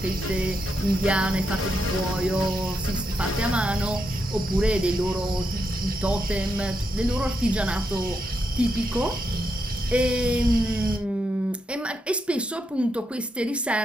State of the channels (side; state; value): both; normal; correlation 0.82